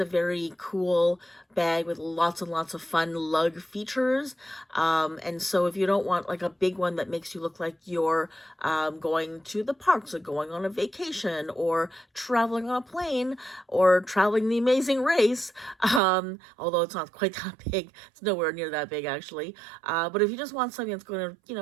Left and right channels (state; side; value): drops out; left; at 16.0 s